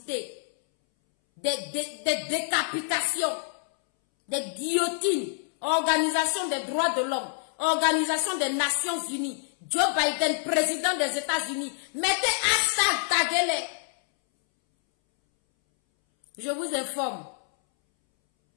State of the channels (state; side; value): silent; right; 60 dB below the other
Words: Des décapitations, des guillotines, Organisation des droits de l'homme, Organisation des Nations Unies, Joe Biden, président des États-Unis, mettez hashtag taguez-les. Je vous informe.